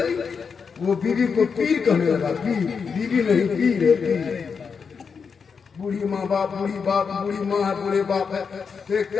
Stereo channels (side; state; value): right; quieter; 5.8 dB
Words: वो बीवी को पीर कहने लगा, पीर, बीवी नहीं पीर है, पीर। बूढ़ी माँ बाप, बूढ़ी बाप, बूढ़ी माँ है, बूढ़े बाप है,